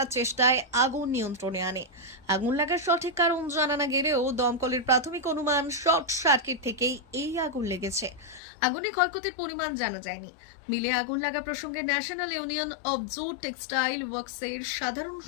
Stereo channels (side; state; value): right; drops out; at 8.4 s